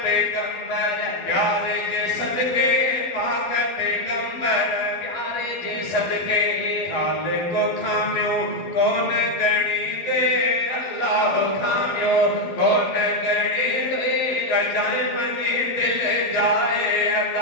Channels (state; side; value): late; right; 12 ms